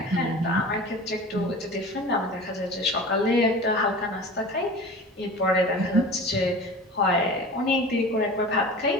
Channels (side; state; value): both; normal; correlation 0.36